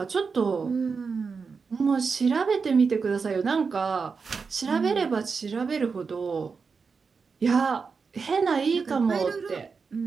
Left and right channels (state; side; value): quieter; left; 5.2 dB